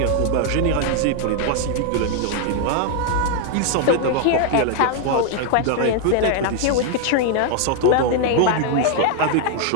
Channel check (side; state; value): both; different; correlation 0.00